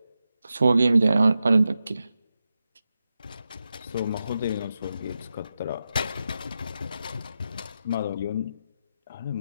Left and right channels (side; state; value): both; inverted; correlation -0.89